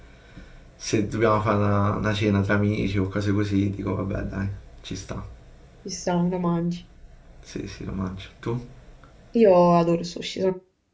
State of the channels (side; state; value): both; identical; correlation 1.00